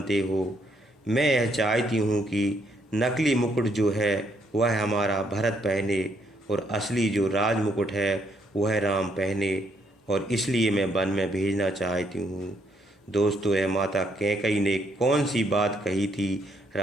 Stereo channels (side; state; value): both; normal; correlation 0.72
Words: हो, मैं यह चाहती हूँ कि नकली मुकुट जो है वह हमारा भरत पहने और असली जो राज मुकुट है वह राम पहने, और इसलिए मैं वन में भेजना चाहती हूँ। दोस्तों, यह माता कैकई ने कौन सी बात कही थी